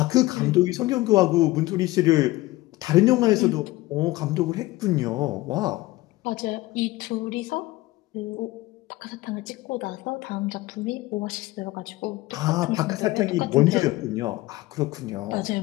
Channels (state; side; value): quieter; right; 18.8 dB